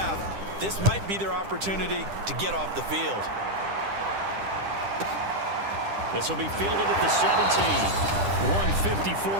This might be their opportunity to get off the field. This will be fielded at the 17.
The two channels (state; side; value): late; left; 10 ms